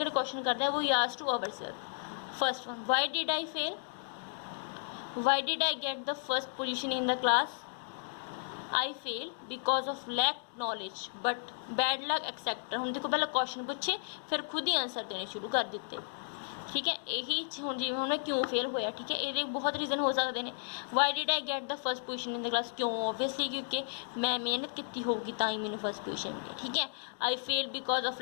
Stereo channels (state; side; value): silent; right; digital silence